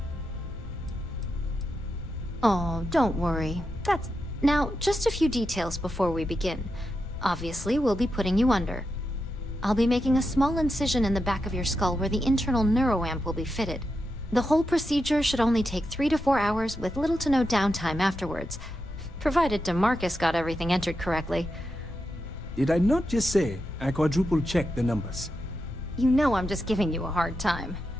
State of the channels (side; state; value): both; normal; correlation 0.87